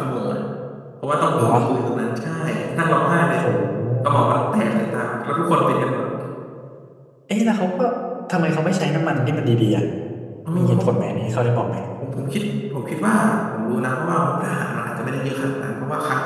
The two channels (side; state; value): both; identical; correlation 1.00